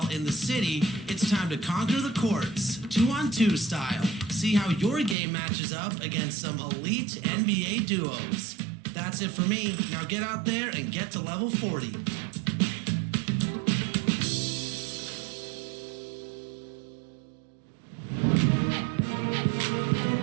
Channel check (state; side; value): drops out; left; at 5.2 s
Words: in the city, it's time to conquer the courts, 2-on-2 style. See how your game matches up against some elite NBA duos. That's it for me. Now get out there and get to level 40.